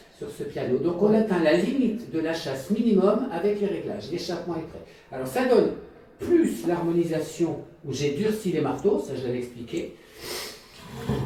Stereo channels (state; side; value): identical; both; correlation 1.00